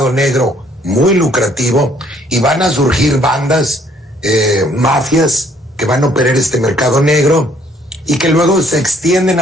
negro muy lucrativo, y van a surgir bandas, mafias, que van a operar este mercado negro y que luego se extienden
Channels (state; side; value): normal; both; correlation 0.63